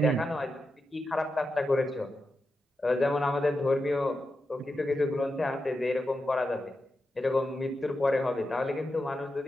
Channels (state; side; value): normal; both; correlation 0.89